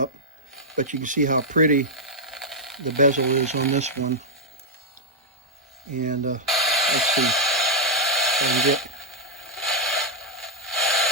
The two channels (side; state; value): both; normal; correlation -0.04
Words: But you can see how pretty the bezel is on this one. And let's see if I can get...